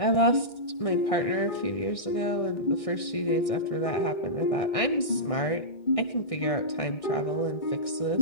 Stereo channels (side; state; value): right; late; 1.6 ms